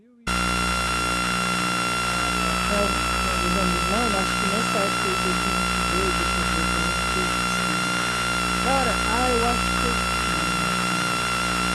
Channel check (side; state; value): both; identical; correlation 1.00